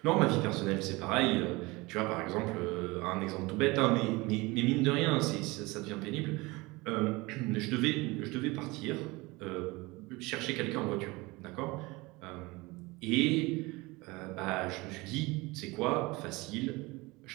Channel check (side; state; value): left; quieter; 23.3 dB